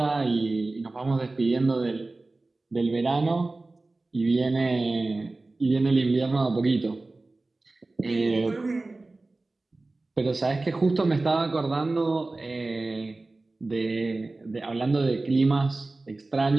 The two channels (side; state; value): left; quieter; 3.2 dB